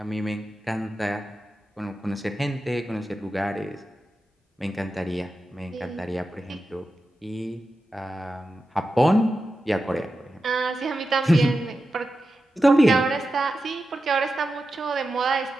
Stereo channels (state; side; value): normal; both; correlation 0.91